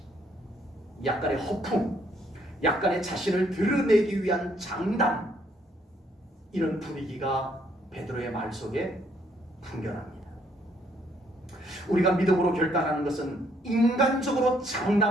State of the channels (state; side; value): normal; both; correlation 0.69